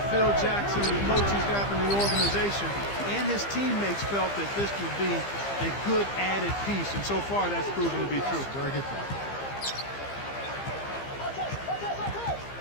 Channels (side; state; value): right; late; 15 ms